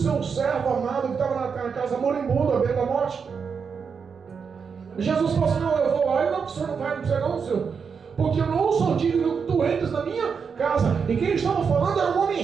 servo amado que estava na casa moribundo, à beira da morte? Jesus falou assim: não, eu vou lá. E não, o senhor não vai, não precisa não, senhor, porque eu não sou digno que tu entres na minha casa. E quem estava falando era um homem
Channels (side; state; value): left; quieter; 6.0 dB